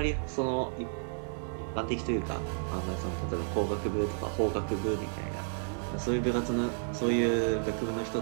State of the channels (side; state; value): left; silent; digital silence